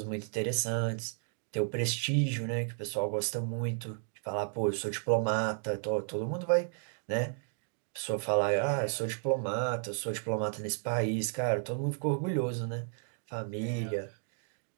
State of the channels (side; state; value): left; silent; 56 dB below the other